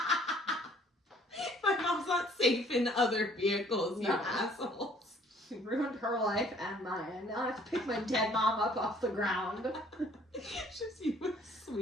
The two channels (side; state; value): both; normal; correlation 0.58